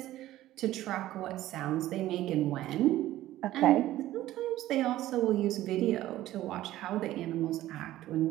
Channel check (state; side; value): quieter; left; 14.7 dB